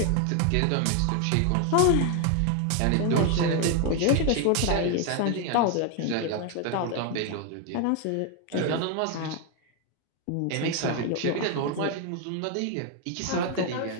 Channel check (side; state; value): both; different; correlation 0.01